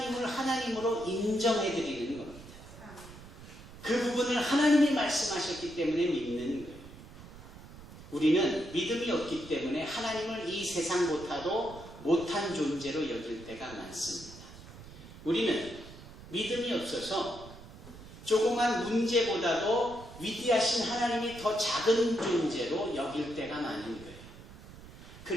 하나님으로 인정해드리는 겁니다. 그 부분을 하나님이 말씀하셨기 때문에 믿는 거예요. 우리는 믿음이 없기 때문에 하나님을 이 세상보다도 못한 존재로 여길 때가 많습니다. 우리는 믿음이 없어서 조그만 문제보다도 위대하신 하나님이 더 작은 존재로 여길 때가 많은 거예요.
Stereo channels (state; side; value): noise; right; rumble, 17 dB below the sound